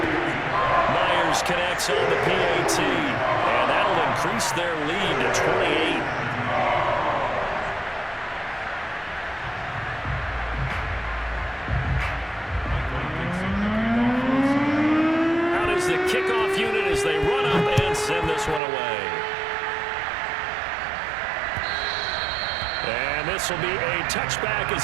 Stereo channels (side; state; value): left; drops out; at 18.6 s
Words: Myers connects on the PAT, and that'll increase their lead to 28. The kickoff unit as they run up and send this one away. And this will be a touchback